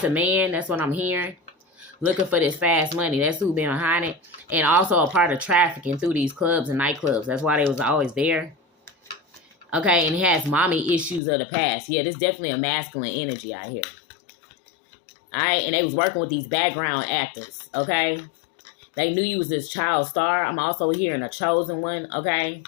to men. That's what I'm hearing. Looking for this fast money. That's who been behind it. And also a part of trafficking through these clubs and nightclubs. That's why they was always there. Okay, and he has mommy issues of the past. Yeah, this is definitely a masculine energy out here. All right, and they was working with these background actors, okay? They knew you was this child star. I'm also hearing a chosen one, okay?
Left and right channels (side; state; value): right; drops out; at 11.2 s